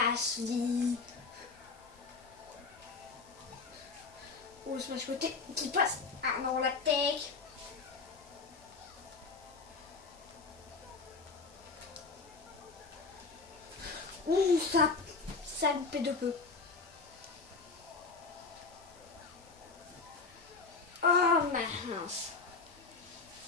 vie. Oh, le smash côté qui passe. Ah non, la tech. Ouh, ça loupé de peu. Oh mince.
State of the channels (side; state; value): right; quieter; 4.4 dB